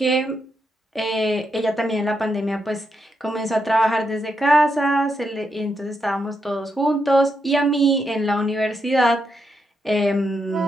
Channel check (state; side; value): normal; both; correlation 0.82